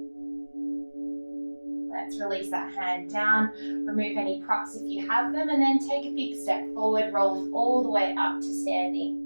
Let's release that hand down, remove any props if you have them, and then take a big step forward, rolling all the way up to standing.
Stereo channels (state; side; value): inverted; both; correlation -1.00